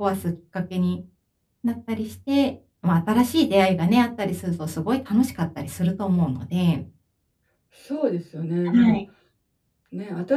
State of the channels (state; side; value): identical; both; correlation 1.00